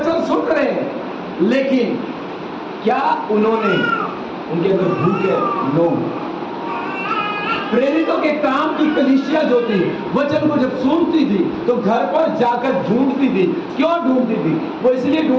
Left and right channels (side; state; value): both; identical; correlation 1.00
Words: सुन रहे हैं, लेकिन क्या उन्होंने उनके अंदर भूख है? नो। प्रेरितों के काम की कलीसिया जो थी, वचन को जब सुनती थी तो घर पर जाकर ढूंढती थी। क्यों ढूंढती थी? वो इसलिए